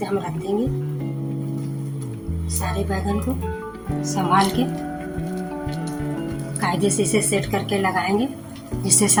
हम रख देंगे। सारे बैगन को संभाल के कायदे से इसे सेट करके लगाएंगे, जिससे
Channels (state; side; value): identical; both; correlation 1.00